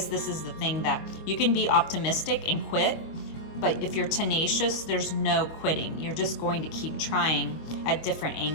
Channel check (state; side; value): late; right; 25 ms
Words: this is the thing, that you can be optimistic and quit, but if you're tenacious, there's no quitting. You're just going to keep trying at different